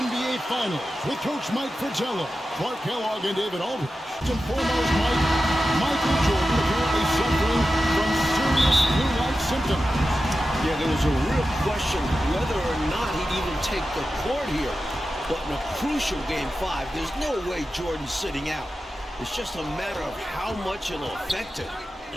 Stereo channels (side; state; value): both; normal; correlation 0.92